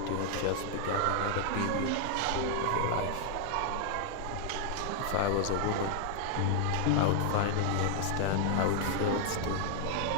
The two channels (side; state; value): both; different; correlation 0.00